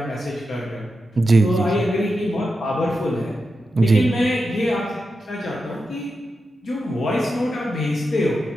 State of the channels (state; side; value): normal; both; correlation 0.89